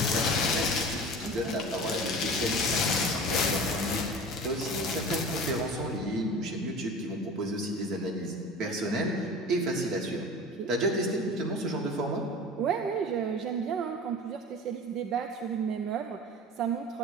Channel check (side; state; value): both; normal; correlation 0.37